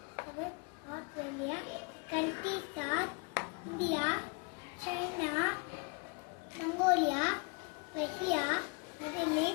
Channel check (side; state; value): right; quieter; 32.6 dB